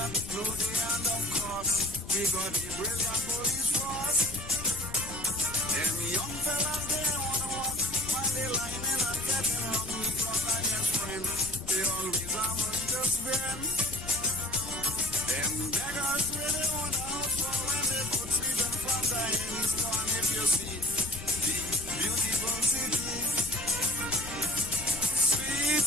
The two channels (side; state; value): left; noise; rumble, 13 dB below the sound